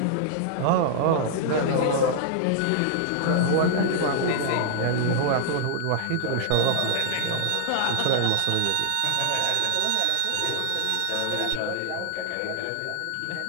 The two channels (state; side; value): different; both; correlation -0.01